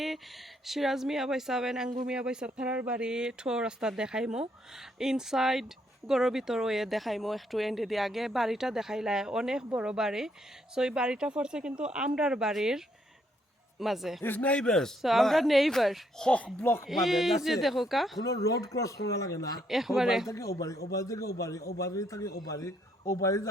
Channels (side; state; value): both; normal; correlation 0.72